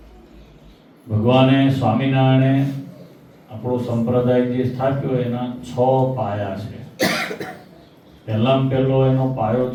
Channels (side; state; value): both; identical; correlation 1.00